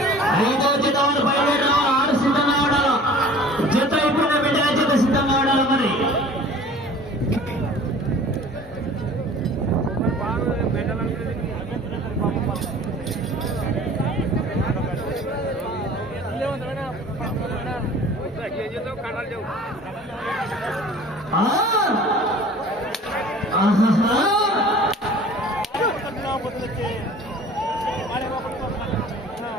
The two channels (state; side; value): normal; both; correlation 0.46